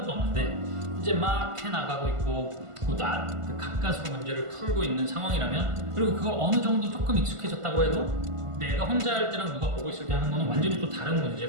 없는데 이제 막 해나가고 있고 그 가까스로 문제를 풀고 있는 상황이라면, 그리고 그걸 어느 정도 조금 익숙해졌다고 해도 내가 혼자 할 때랑 누가 보고 있을 때 하는 거는 완전히 또 다른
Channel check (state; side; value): late; left; 1.5 ms